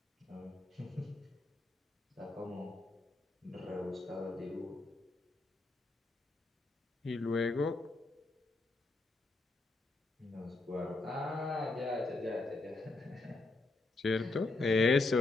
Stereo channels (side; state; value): right; quieter; 3.2 dB